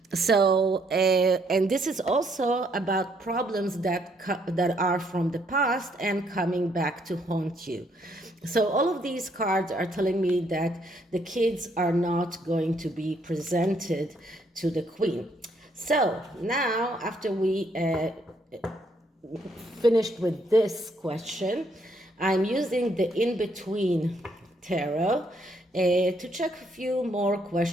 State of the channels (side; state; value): both; normal; correlation 0.70